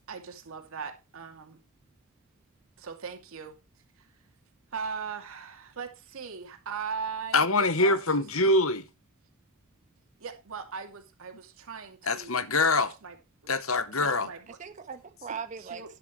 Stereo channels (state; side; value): normal; both; correlation -0.06